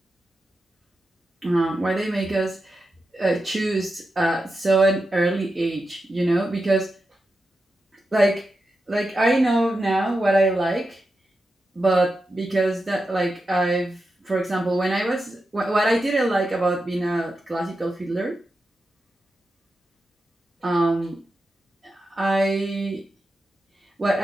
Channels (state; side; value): normal; both; correlation 0.89